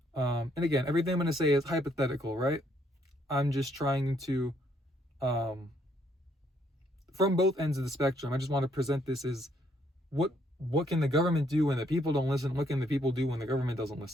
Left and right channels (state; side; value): normal; both; correlation 0.70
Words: And again, everything I'm going to say is hypothetical, right? I'm just trying to, from both ends of the spectrum, I just want to present this as what can the government do when the people don't listen? What can the people do when the government doesn't